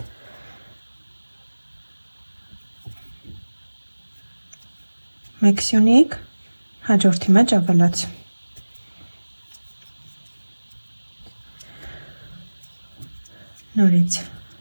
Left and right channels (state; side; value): inverted; both; correlation -1.00